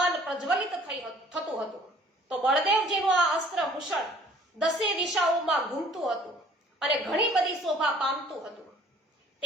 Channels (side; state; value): both; normal; correlation 0.54